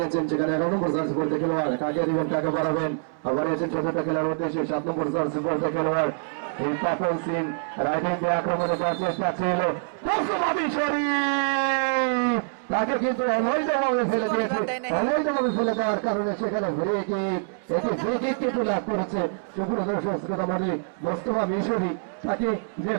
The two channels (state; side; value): silent; left; 61 dB below the other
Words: সেখানে 11 নম্বর জার্সি পড়তে খেলোয়াড়, কাকে দিবেন কাকে বাড়াবেন, বাড়িয়েছেন 14টা খেলোয়াড় উদ্দেশ্যে 7 নম্বর জার্সি পড়তে খেলোয়াড় এই পাপন সিং রাইটিং দিয়ে আক্রমণে যাওয়ার চেষ্টা ছিল, তাকে কিন্তু অবৈধভাবে ফেলে দিয়েছে। অবৈধভাবে ফেলে দেওয়ার কারণে সেখানে এটি ফ্রি কিক কিন্তু লাভ করেছে। সুপ্রিয় দর্শক শ্রোতা মণ্ডলী, মোস্তফা মিশরি তাকে যে